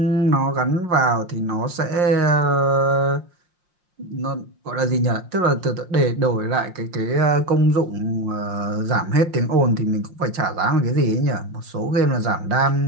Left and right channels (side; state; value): left; late; 5.6 ms